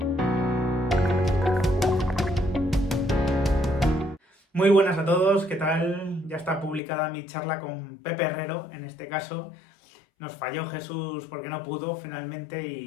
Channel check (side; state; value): right; drops out; at 6.8 s